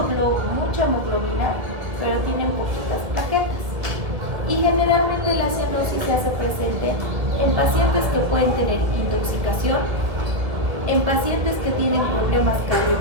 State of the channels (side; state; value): left; late; 1.9 ms